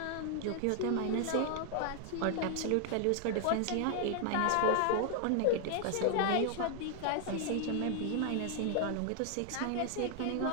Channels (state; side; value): different; both; correlation 0.00